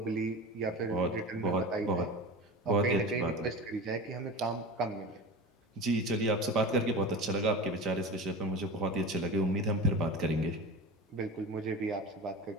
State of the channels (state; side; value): normal; both; correlation 0.30